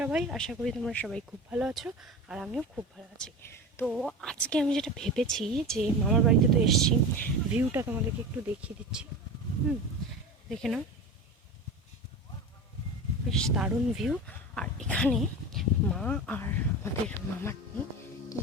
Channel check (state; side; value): normal; both; correlation 0.30